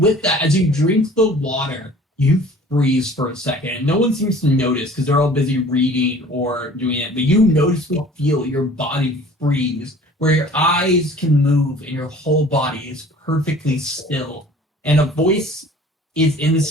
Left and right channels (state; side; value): normal; both; correlation 0.48